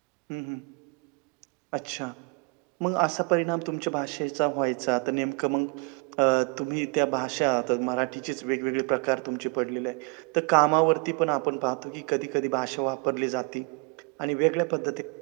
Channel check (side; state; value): left; quieter; 33.6 dB